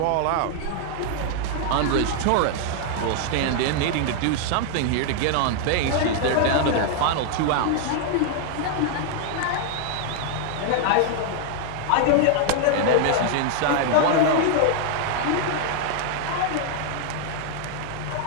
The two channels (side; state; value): both; different; correlation 0.00